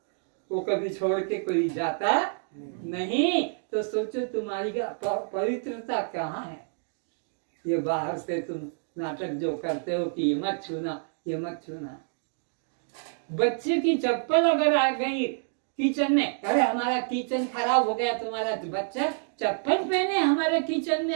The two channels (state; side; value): silent; left; digital silence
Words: वो कभी छोड़ के कोई जाता नहीं। तो सोचो तुम्हारी पवित्रता कहाँ है। ये बाहर से तुम नाटक जो करते हो कि ये मत छूना, ये मत छूना। बच्चे की चप्पल अगर आ गई किचन में, अरे हमारा किचन खराब हो गया, तुम्हारा बच्चा चप्पल पहने हमारे किचन में